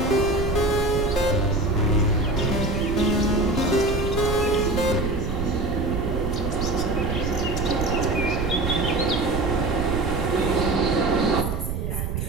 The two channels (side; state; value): right; noise; rumble, 3 dB below the sound